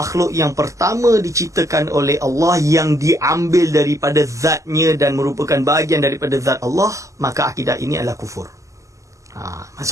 yang pertama diciptakan oleh Allah, yang diambil daripada zatnya dan merupakan bahagian daripada zat Allah, maka akidah ini adalah kufur.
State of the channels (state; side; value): late; left; 0.16 ms